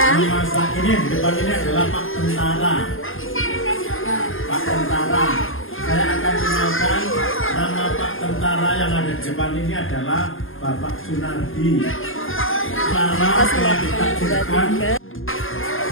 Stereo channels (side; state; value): right; late; 0.59 ms